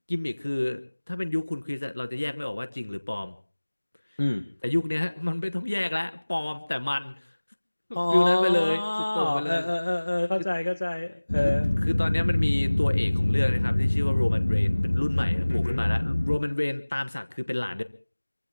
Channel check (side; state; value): both; inverted; correlation -1.00